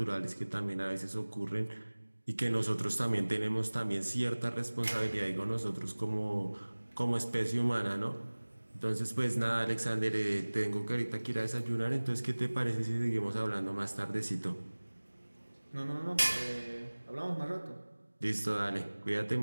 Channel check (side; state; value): both; inverted; correlation -1.00